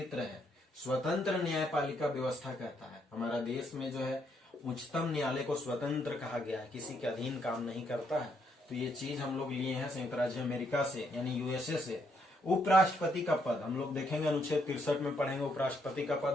है स्वतंत्र न्यायपालिका व्यवस्था कहता है। हमारा देश में जो है उच्चतम न्यायालय को स्वतंत्र कहा गया है, किसी के अधीन काम नहीं करता है। तो ये चीज हम लोग लिए हैं संयुक्त राज्य अमेरिका से, यानी यूएसए से। उपराष्ट्रपति का पद हम लोग देखेंगे, अनुच्छेद 63 में पढ़ेंगे उपराष्ट्रपति का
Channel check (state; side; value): normal; both; correlation 0.74